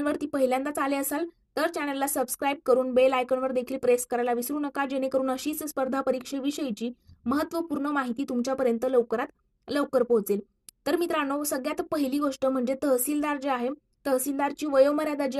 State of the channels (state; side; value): identical; both; correlation 1.00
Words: पहिल्यांदाच आले असाल तर चॅनलला सबस्क्राईब करून बेल आयकॉनवर देखील प्रेस करायला विसरू नका, जेणेकरून अशीच स्पर्धा परीक्षेविषयीची महत्त्वपूर्ण माहिती तुमच्यापर्यंत लवकरात लवकर पोहोचेल। तर मित्रांनो, सगळ्यात पहिली गोष्ट म्हणजे तहसीलदार जे आहे, तहसीलदारची वयोमर्यादा जी